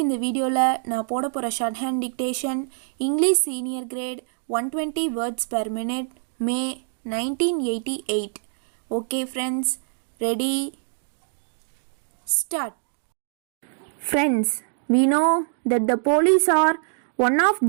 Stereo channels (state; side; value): silent; left; digital silence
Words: இந்த வீடியோவில் நான் போட போகிற short hand dictation English senior great 120 words per minute May 1988. Okay friends, ready, start. Friends, we know that the police are one of